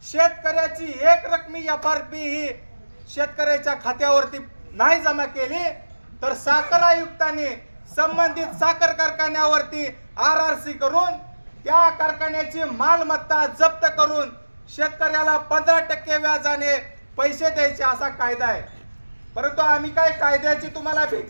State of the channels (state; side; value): inverted; both; correlation -1.00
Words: शेतकऱ्याची एक रकमी FRP ही शेतकऱ्याच्या खात्यावरती नाही जमा केली तर साखर आयुक्तांनी संबंधित साखर कारखान्यावरती RRC करून त्या कारखान्याची मालमत्ता जप्त करून शेतकऱ्याला 15% व्याजाने पैसे द्यायचे असा कायदा आहे। परंतु आम्ही काय कायद्याची तुम्हाला